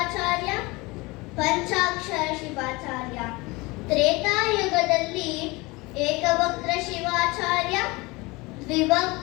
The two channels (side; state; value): right; quieter; 23.9 dB